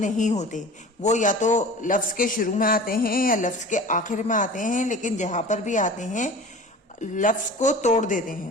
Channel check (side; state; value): both; normal; correlation 0.40